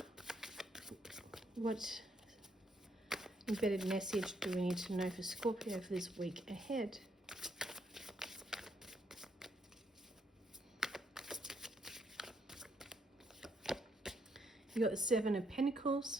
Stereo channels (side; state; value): both; normal; correlation 0.74